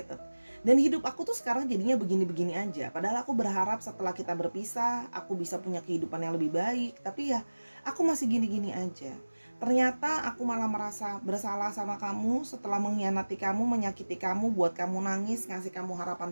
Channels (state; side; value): inverted; both; correlation -1.00